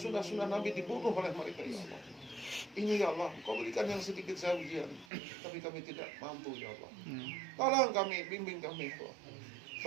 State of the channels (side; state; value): left; drops out; at 5.1 s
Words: Nabi dibunuh oleh mereka ya Allah. Ini ya Allah, Kau berikan yang sedikit saya ujian, tapi kami tidak mampu ya Allah. Tolong kami, bimbing kami ya Allah.